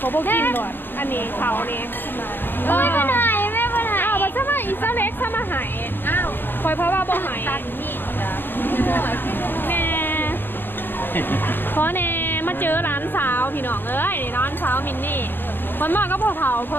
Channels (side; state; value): right; late; 0.098 ms